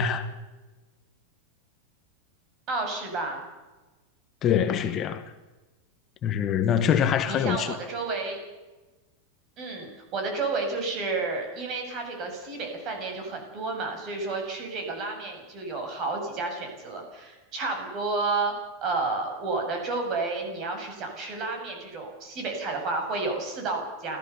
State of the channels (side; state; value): both; normal; correlation 0.19